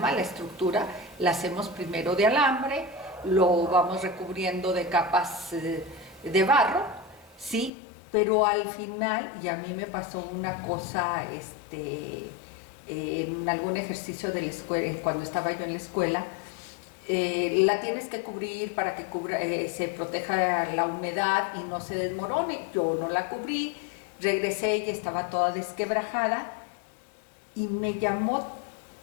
la estructura, la hacemos primero de alambre, lo vamos recubriendo de capas de barro, ¿sí? Pero al final, y a mí me pasó una cosa, en algún ejercicio de la escuela, cuando estaba yo en la escuela, la tienes que cubrir para que se proteja la humedad y no se desmorone. Yo no la cubrí, regresé y estaba toda desquebrajada y me llamó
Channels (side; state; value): right; drops out; at 7.7 s